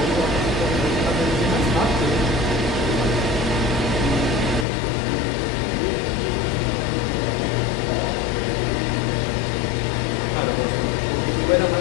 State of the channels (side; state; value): right; drops out; at 4.7 s